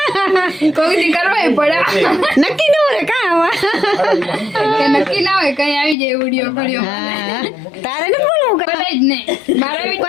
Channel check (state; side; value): drops out; right; at 6.0 s